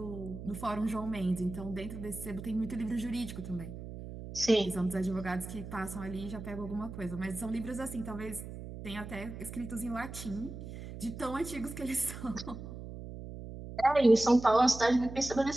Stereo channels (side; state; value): right; noise; hum, 10 dB below the sound